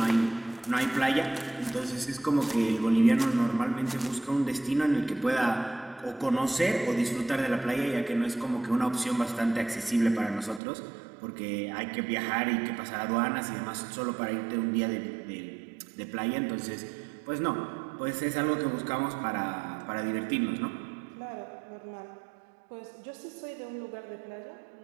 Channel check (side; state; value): left; drops out; at 10.6 s